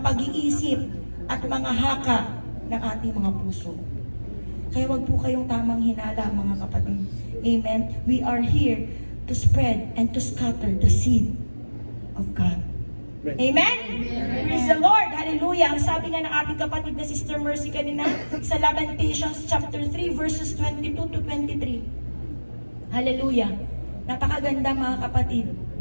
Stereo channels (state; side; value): inverted; both; correlation -1.00